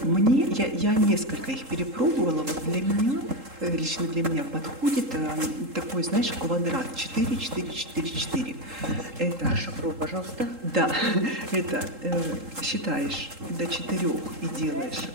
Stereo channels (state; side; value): late; left; 3.8 ms